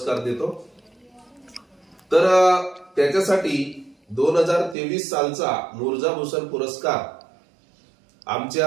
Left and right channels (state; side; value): drops out; left; at 4.8 s